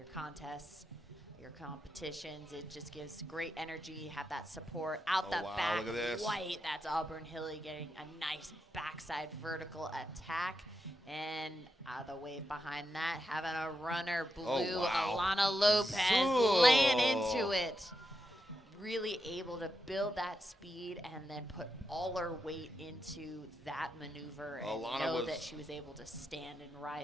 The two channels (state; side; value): normal; both; correlation 0.86